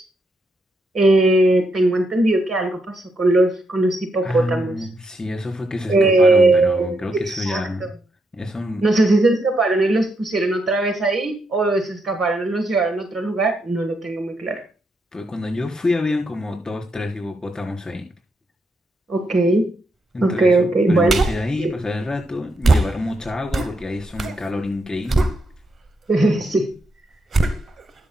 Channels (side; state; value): both; normal; correlation 0.80